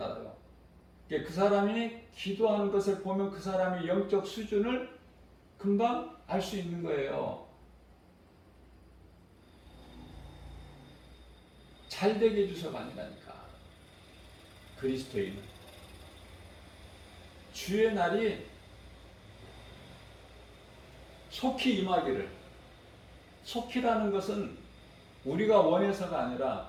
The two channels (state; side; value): identical; both; correlation 1.00